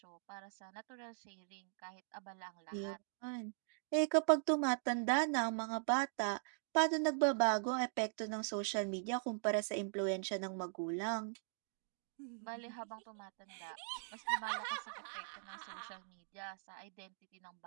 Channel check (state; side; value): silent; left; digital silence